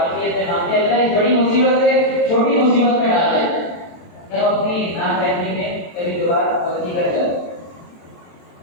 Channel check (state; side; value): late; right; 23 ms